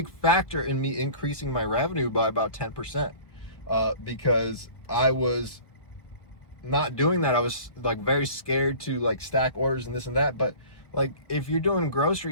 factor in me increasing my revenue by about 10%, because I was not doing that. I was like very scared to like stack orders and this and that. But like if you're doing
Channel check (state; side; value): late; right; 1.4 ms